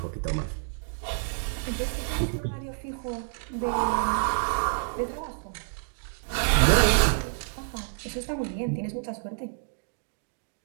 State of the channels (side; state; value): left; silent; digital silence